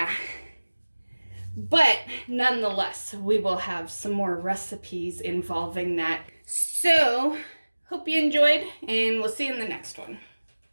But nonetheless, we will have some more recipes involving that. So, hope you enjoyed, and we'll see you in the next one.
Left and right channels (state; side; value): inverted; both; correlation -1.00